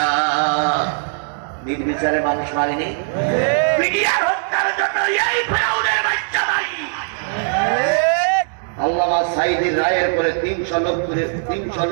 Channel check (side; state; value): left; silent; digital silence